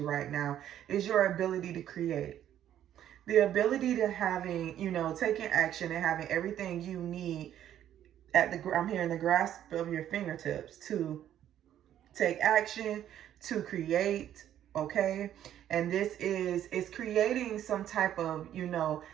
right now is your ability to create. The ability to having, taking action and having everything you need I'm hearing the grasp of your fingertips to take action, to create, okay? And this is creating some type of,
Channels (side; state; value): left; quieter; 11.0 dB